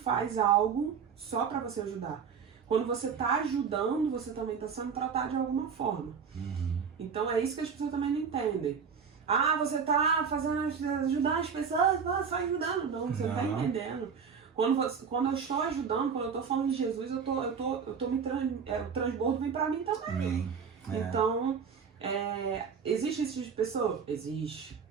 algo só para você ajudar. Quando você está ajudando, você também está sendo tratado de alguma forma. Então é isso que as pessoas também não entendem. Ah, você está fazendo ajudar as pessoas, só ajudando. Não, você não está entendendo. Quando eu estou ajudando, quando eu estou falando de Jesus, o transbordo vem para mim também. Então, existe esse tipo de pessoa? Existe.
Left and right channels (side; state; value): left; quieter; 6.4 dB